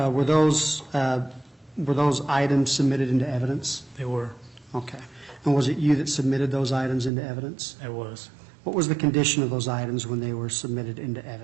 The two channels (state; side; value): drops out; left; at 7.1 s